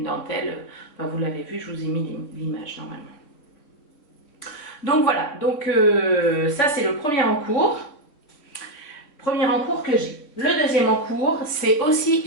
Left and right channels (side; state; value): right; late; 3.5 ms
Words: dentelle, enfin, vous l'avez vu, je vous ai mis l'image normalement. Donc voilà, donc ça c'est le premier en cours que j'ai. Le deuxième en cours, c'est aussi